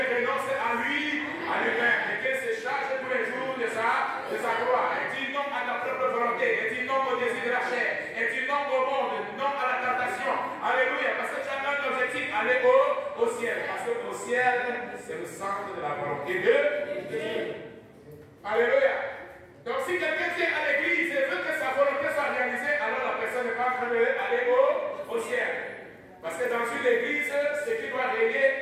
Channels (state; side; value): identical; both; correlation 1.00